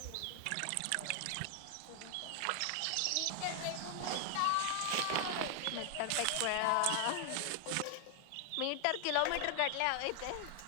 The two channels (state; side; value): different; both; correlation 0.00